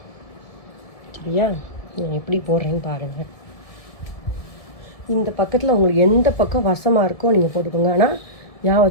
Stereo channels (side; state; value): right; late; 1.7 ms